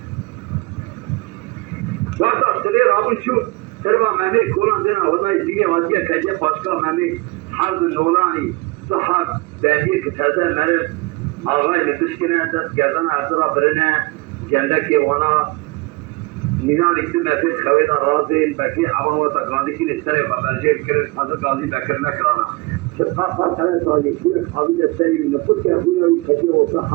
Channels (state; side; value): quieter; left; 24.3 dB